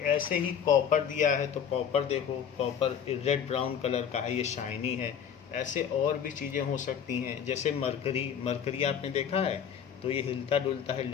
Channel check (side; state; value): right; quieter; 8.1 dB